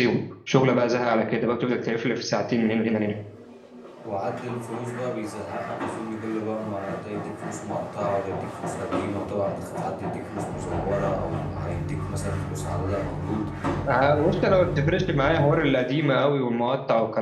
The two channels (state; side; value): identical; both; correlation 1.00